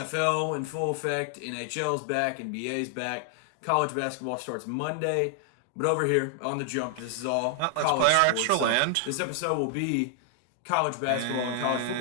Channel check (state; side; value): different; both; correlation 0.00